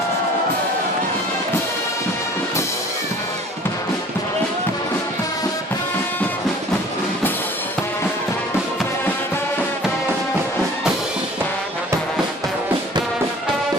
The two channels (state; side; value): normal; both; correlation 0.48